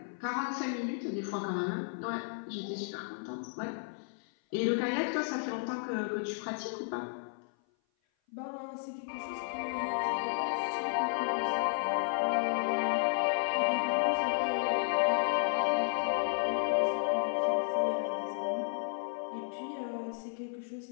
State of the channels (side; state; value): right; silent; 56 dB below the other